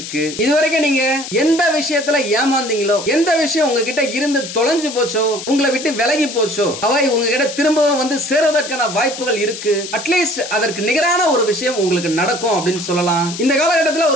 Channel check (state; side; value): noise; left; hiss, 9 dB below the sound